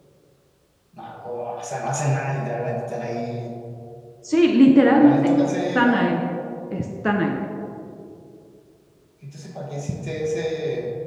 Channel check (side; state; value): both; identical; correlation 1.00